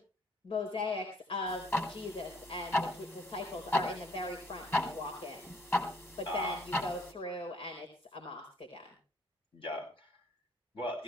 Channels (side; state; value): both; normal; correlation 0.63